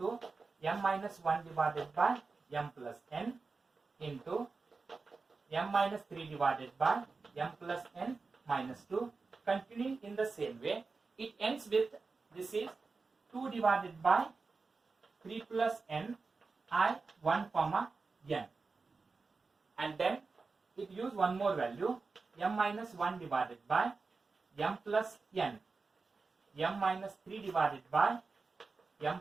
m minus 1 divided by m plus n into m minus 3 divided by m plus n minus 2. Continuing in the same way, it ends with, this is 2 divided by 3 plus n I 1 comma n, and then it use one more value m minus 1 divided by m plus n, m minus 3 divided by m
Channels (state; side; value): quieter; left; 4.2 dB